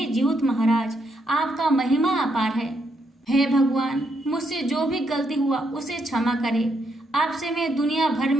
जीउत महाराज, आपका महिमा अपार है। हे भगवान, मुझसे जो भी गलती हुआ उसे क्षमा करे। आपसे मैं दुनिया भर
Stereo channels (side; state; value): both; normal; correlation 0.77